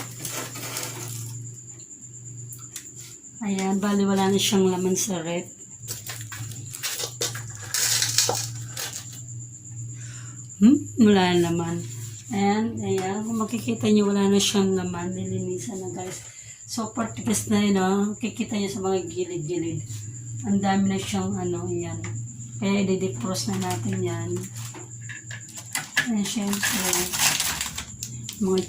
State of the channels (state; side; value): identical; both; correlation 1.00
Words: Ayan, bali wala na siyang laman sa rep. Wala na naman. Ayan, kung makikita nyo, wala na siyang laman. Nilinisan na guys. Super tigas na yun, oh. Kikita nyo sa mga gilid-gilid. Ang dami na siyang ayan. Kaya i-defrost na natin yan. Ayan, syempre. Mga